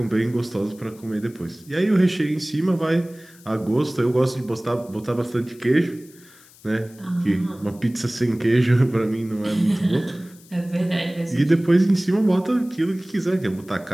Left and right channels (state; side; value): noise; left; hiss, 25 dB below the sound